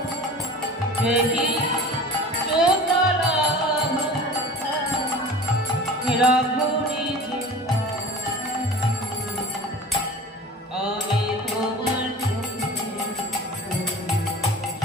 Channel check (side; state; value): both; normal; correlation 0.39